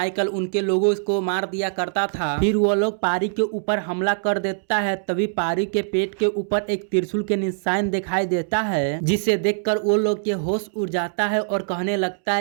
उनके लोगों को मार दिया करता था। फिर वो लोग पारी के ऊपर हमला कर देता है, तभी पारी के पेट के ऊपर एक त्रिशूल के निशान दिखाई देता है, जिसे देखकर वो लोग के होश उड़ जाता है और कहने लगता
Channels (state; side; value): silent; left; digital silence